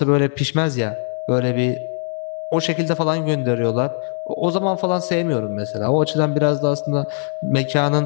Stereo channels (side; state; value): right; silent; digital silence